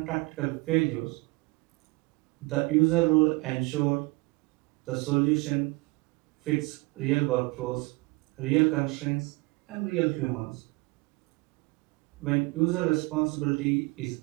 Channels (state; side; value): quieter; left; 24.9 dB